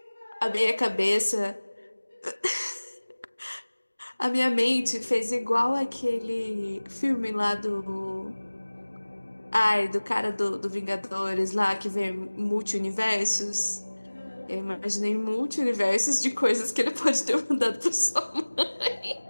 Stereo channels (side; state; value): both; inverted; correlation -1.00